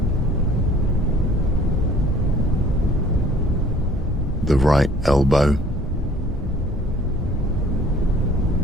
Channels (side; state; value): both; normal; correlation 0.54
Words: The right elbow.